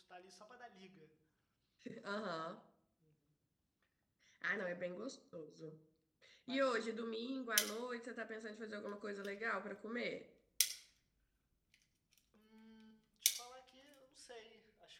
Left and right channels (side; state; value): both; identical; correlation 1.00